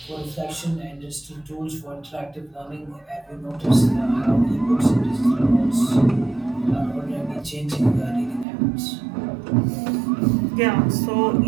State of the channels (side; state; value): left; drops out; at 8.5 s